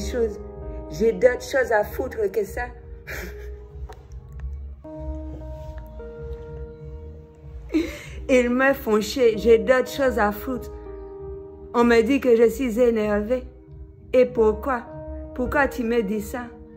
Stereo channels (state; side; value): identical; both; correlation 1.00